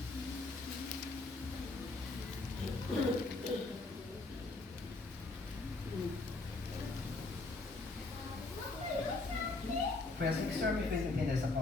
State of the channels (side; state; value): right; quieter; 3.3 dB